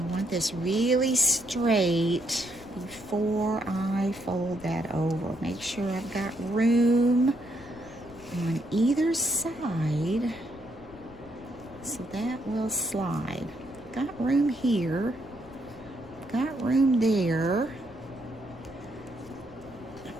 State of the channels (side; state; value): left; noise; rumble, 21 dB below the sound